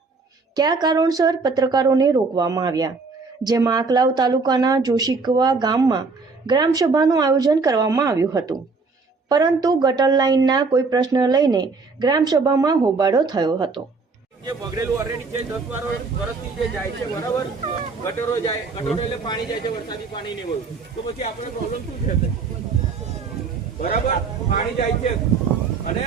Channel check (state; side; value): quieter; left; 4.3 dB